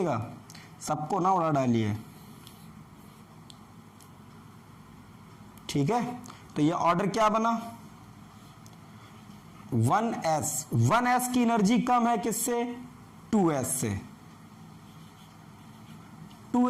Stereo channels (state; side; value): identical; both; correlation 1.00